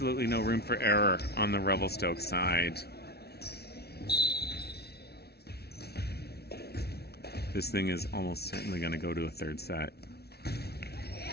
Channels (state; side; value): late; right; 0.47 ms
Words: no room for error on the Revelstoke side. This thing is almost certainly going to go to a third set.